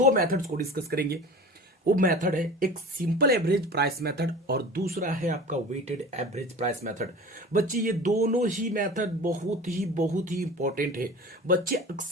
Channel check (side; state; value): both; normal; correlation 0.38